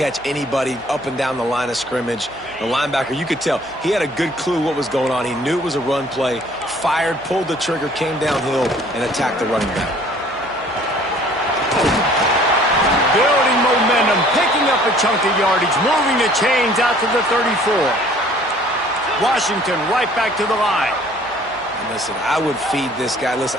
anybody up and down the line of scrimmage. The linebacker, you could tell, he had a good clue what was going on. He knew it was a run play, fired, pulled the trigger, came downhill, and attacked the running back. Building momentum, picking up a chunk of yardage, moving the chains out to the 34. Washington right back to the line. And listen, I would feed this guy.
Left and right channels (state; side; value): noise; right; hum, 26 dB below the sound